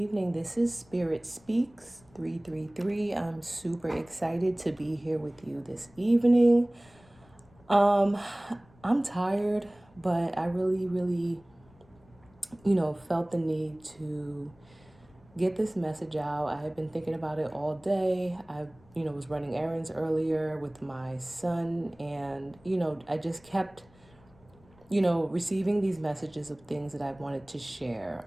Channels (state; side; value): noise; left; rumble, 28 dB below the sound